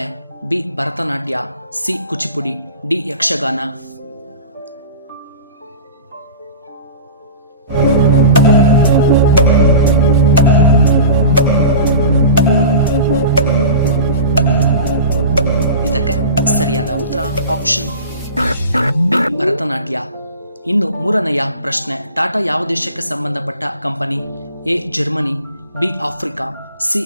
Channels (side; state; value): both; inverted; correlation -0.35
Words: B Bharatanatyam, C Kuchipudi, D Yakshagana. ಇದಕ್ಕೆ ಸರಿಯಾದ ಉತ್ತರ ಆಪ್ಷನ್ ಬಿ ಭರತನಾಟ್ಯ. ಇನ್ನು ಮೂರನೆಯ ಪ್ರಶ್ನೆ, ಟಾಟಾ ಯಾವ ದೇಶಕ್ಕೆ ಸಂಬಂಧಪಟ್ಟ company? A Germany, B Africa, C